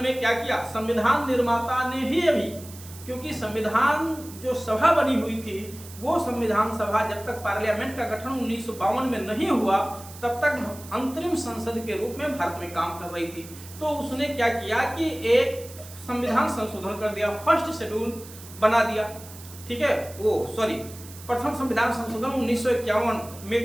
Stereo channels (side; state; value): right; noise; hiss, 17 dB below the sound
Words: में क्या किया? संविधान निर्माता ने ही अभी, क्योंकि संविधान जो सभा बनी हुई थी वो संविधान सभा जब तक पार्लियामेंट का गठन 1952 में नहीं हुआ तब तक अंतरिम संसद के रूप में भारत में काम कर रही थी। तो उसने क्या किया कि एक संविधान संशोधन कर दिया, फर्स्ट शेड्यूल बना दिया, ठीक है, प्रथम संविधान संशोधन 1951